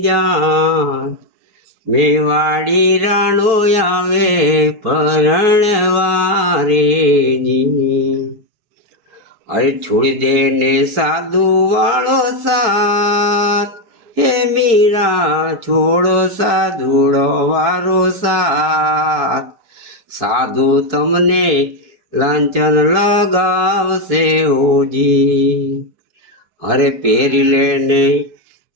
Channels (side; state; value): left; late; 4.5 ms